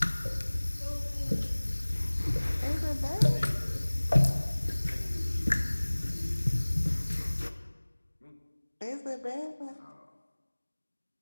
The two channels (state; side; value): inverted; both; correlation -1.00